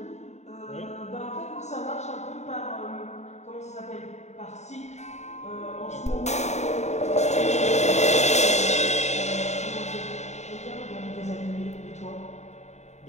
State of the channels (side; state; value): right; late; 0.33 ms